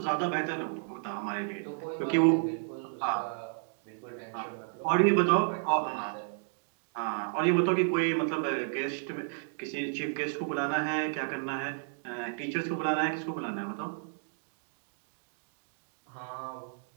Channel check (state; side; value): silent; left; digital silence